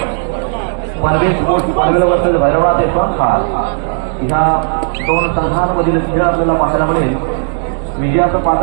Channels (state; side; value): silent; left; digital silence